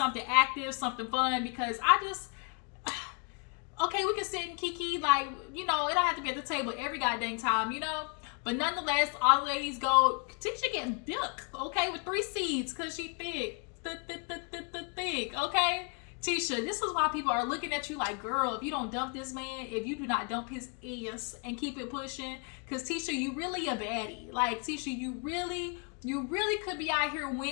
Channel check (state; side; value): quieter; right; 36.4 dB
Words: active, something fun, because I just, okay, we can sit and kiki, like, it don't have to be at the table every goddamn time, But nonetheless, all the ladies go, Tisha getting thick, okay, with 3 seeds, because she thick, okay? Tisha, this is why people are looking at you like, girl, if you don't dump this man, if you do not dump his ass and keep it pushing, because Tisha, you really a baddie. Like, Tisha, you really could be out here